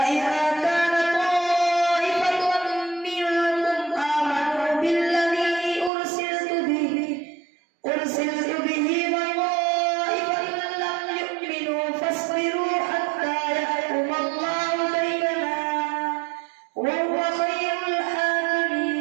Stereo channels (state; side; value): drops out; left; at 5.9 s